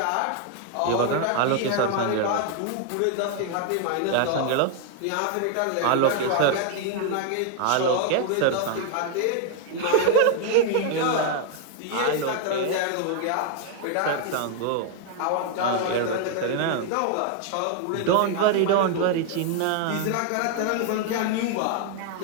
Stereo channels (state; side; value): different; both; correlation 0.00